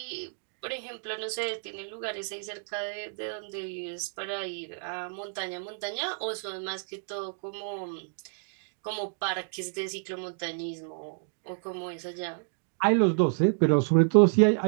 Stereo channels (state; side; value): silent; left; digital silence